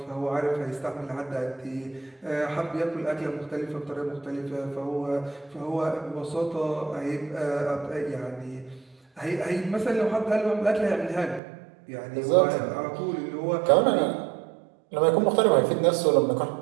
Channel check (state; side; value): drops out; left; at 11.4 s